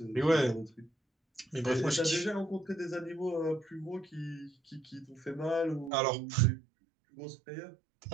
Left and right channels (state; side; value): drops out; left; at 5.9 s